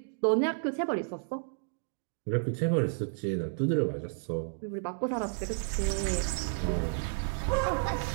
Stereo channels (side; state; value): left; silent; digital silence